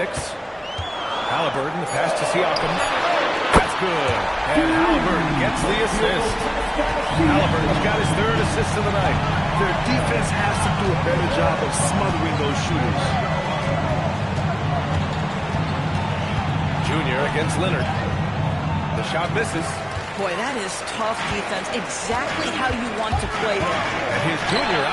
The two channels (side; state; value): both; identical; correlation 1.00